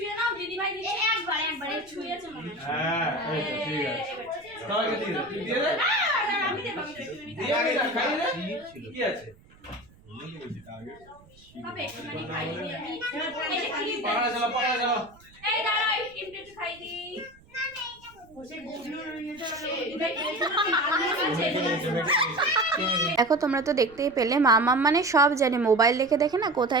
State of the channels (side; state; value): right; noise; rumble, 27 dB below the sound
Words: নাও দিদি ভাই একবার ছুঁয়েছে মনে হয় হ্যাঁ এই তো ঠিক আছে তাহলে দিয়ে দে না আমি দেব দিয়ে আগে খাই দে কি আছে হবে একটুখানি খাই দিই আমি পাড়া চলো এই দাঁড়া এই ক্রিমটা একটু খাই দি দেখো তোমরা তো দেখতেই পেলে মামাম মানে সব জানে, মোবাইল দেখে দেখে না